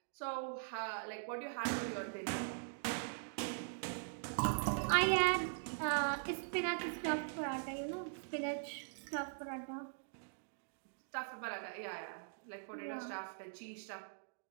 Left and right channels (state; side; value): silent; left; digital silence